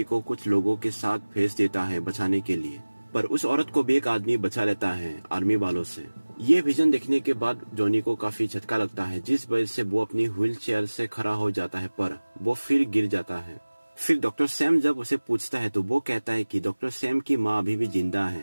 को कुछ लोगों के साथ भेज देता है बचाने के लिए, पर उस औरत को भी एक आदमी बचा लेता है आर्मी वालों से। ये विजन देखने के बाद जॉनी को काफी झटका लगता है, जिस वजह से वो अपनी व्हील चेयर से खड़ा हो जाता है, पर वो फिर गिर जाता है। फिर डॉक्टर सैम जब उसे पूछता है तो वो कहता है कि डॉक्टर सैम की माँ अभी भी जिंदा है,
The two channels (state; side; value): inverted; both; correlation -1.00